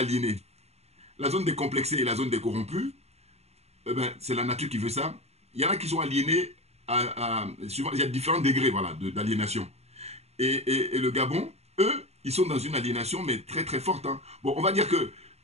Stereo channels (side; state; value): left; late; 0.30 ms